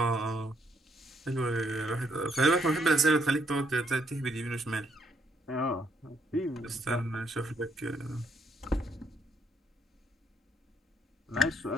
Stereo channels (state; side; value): normal; both; correlation 0.73